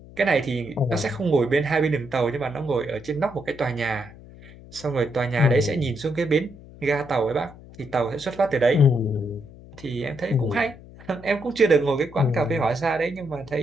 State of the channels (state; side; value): noise; left; hum, 19 dB below the sound